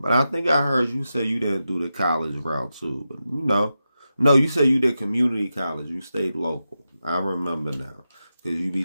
I think I heard you say you didn't do the college route too. But no, you said you did community college. You stayed local. I remember now. Because you be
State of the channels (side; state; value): both; inverted; correlation -0.90